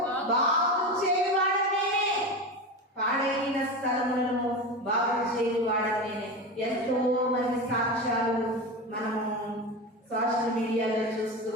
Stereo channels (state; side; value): normal; both; correlation 0.23